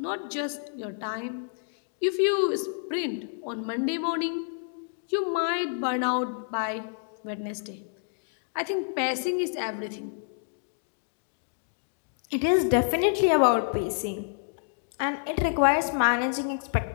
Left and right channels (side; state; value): right; silent; digital silence